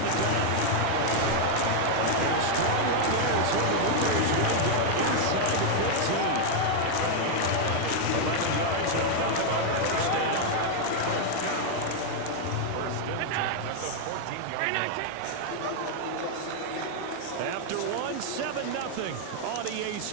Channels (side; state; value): both; different; correlation 0.00